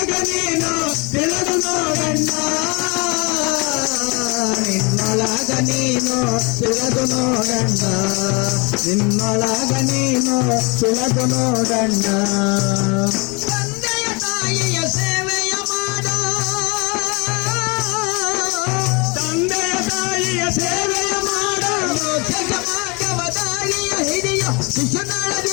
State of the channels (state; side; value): quieter; right; 29.2 dB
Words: ನೀನು ತಿಳಿದು ನೋಡಣ್ಣ ನಿನ್ನೊಳಗ ನೀನು ತಿಳಿದು ನೋಡಣ್ಣ ನಿನ್ನೊಳಗ ನೀನು ತಿಳಿದು ನೋಡಣ್ಣ ತಂದೆಯ ತಾಯಿಯ ಸೇವೆಯ ಮಾಡ ತಂದೆಯ ತಾಯಿಯ ಸೇವೆಯ ಮಾಡ ಮೋಕ್ಷ ಮಾರ್ಗವ ದಾರಿಯ ಹಿಡಿಯ ಶಿಶುನಾಳ